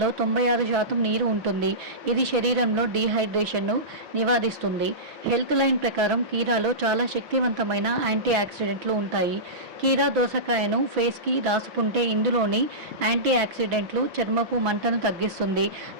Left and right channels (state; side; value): late; left; 6.0 ms